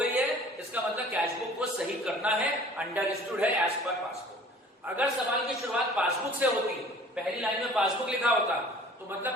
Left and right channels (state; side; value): normal; both; correlation 0.49